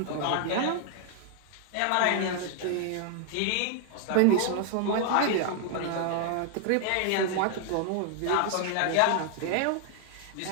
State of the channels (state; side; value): different; both; correlation 0.00